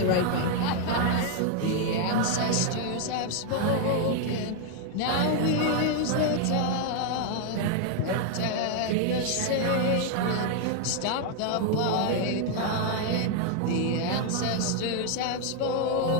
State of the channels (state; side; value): different; both; correlation 0.00